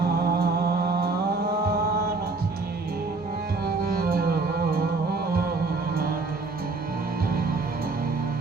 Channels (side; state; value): left; quieter; 3.8 dB